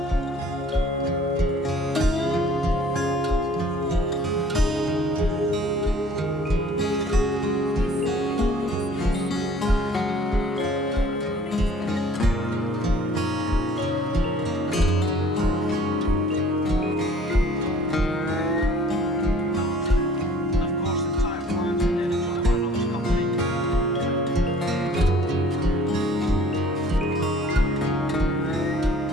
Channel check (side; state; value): both; normal; correlation 0.53